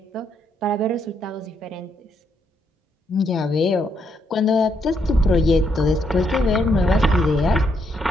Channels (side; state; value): both; normal; correlation 0.76